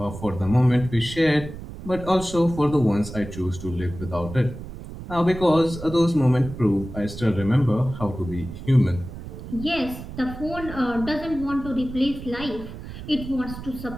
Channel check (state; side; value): noise; right; rumble, 11 dB below the sound